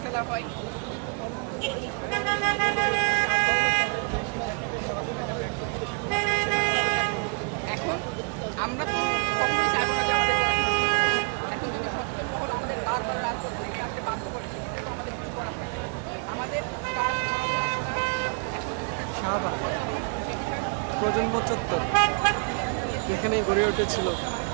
হয়। এখন আমরা তো কখনোই চাইবো না যে এখন যদি সচেতন মহল আমাদের বারবার রাজপথ থেকে আসতে বাধ্য করে, সেক্ষেত্রে তো আমাদের কিছু করার থাকে। আমাদের কাজ শাহবাগ প্রজন্ম চত্বর এখানেই গড়ে উঠেছিল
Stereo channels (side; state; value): left; quieter; 37.5 dB